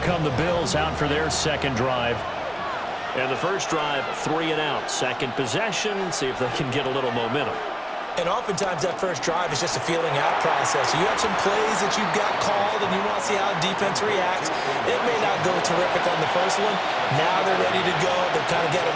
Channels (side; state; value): both; identical; correlation 1.00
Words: come the Bills out for their second drive. And the first drive, 3 and out. Second possession, see if they can get a little momentum. And oftentimes that first drive is just a feeling out process. You have some plays that you've got called and you want to see how defense reacts. It may not go terrific on the first one. Now they're ready to go. They've kind of got a